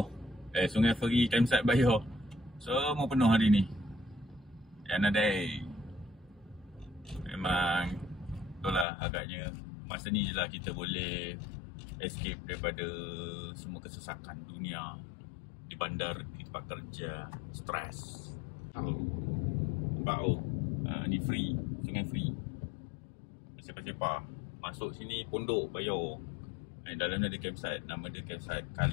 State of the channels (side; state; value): right; drops out; at 8.8 s